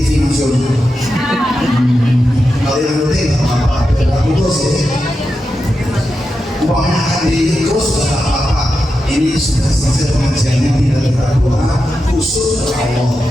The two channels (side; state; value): both; normal; correlation 0.89